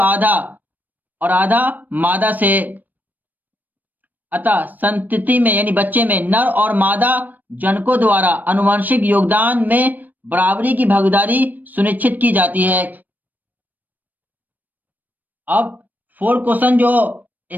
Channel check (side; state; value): left; late; 0.086 ms